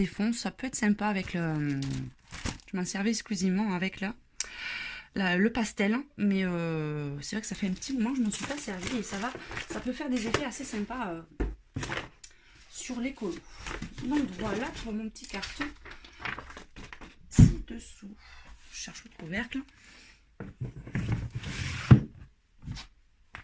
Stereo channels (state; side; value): identical; both; correlation 1.00